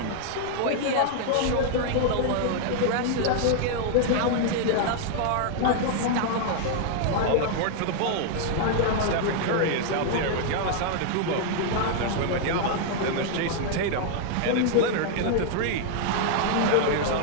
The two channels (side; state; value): both; different; correlation 0.00